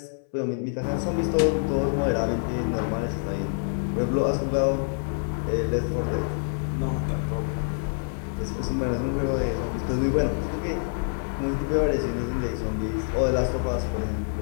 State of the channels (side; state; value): right; silent; 61 dB below the other